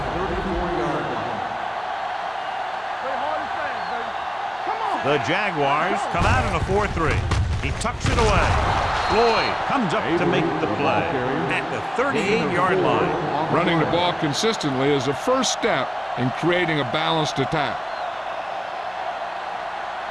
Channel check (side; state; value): both; identical; correlation 1.00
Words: 34-yard line. Play hard and fast, baby. Come on. The Jaguars come out in a 4-3. He tucks it away. Floyd comes up to make the play at the 38-yard line. Running the ball consistently is the first step in creating a balanced attack.